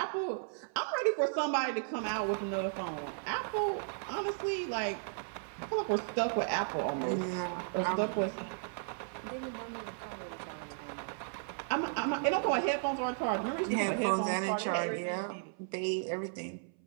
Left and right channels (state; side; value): silent; left; 55 dB below the other